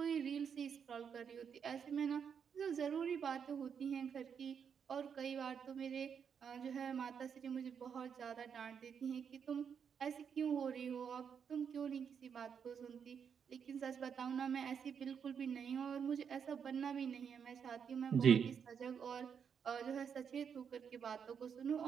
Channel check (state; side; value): quieter; left; 7.2 dB